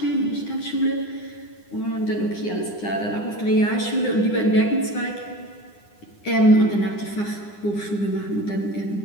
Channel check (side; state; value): right; late; 9.8 ms